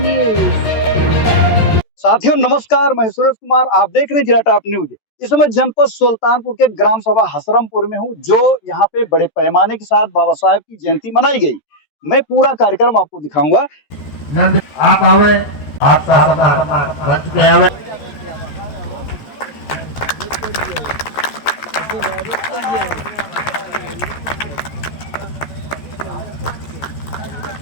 साथियों नमस्कार, मैं सुरेश कुमार, आप देख रहे हैं जिराटा न्यूज। इस समय जनपद सुल्तानपुर के ग्राम सभा हसरमपुर में हूं, जो यहाँ पे बड़े पैमाने के साथ बाबा साहेब की जयंती मनाई गई। मैं पूरा कार्यक्रम आपको दिखाऊंगा। आप आवे, आप मंच पे आवे।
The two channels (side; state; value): right; late; 14 ms